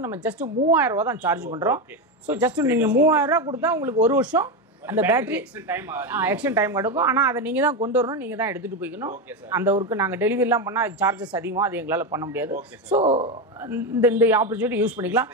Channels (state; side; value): normal; both; correlation 0.13